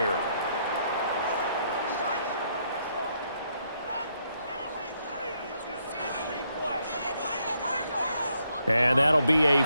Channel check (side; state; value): both; inverted; correlation -0.74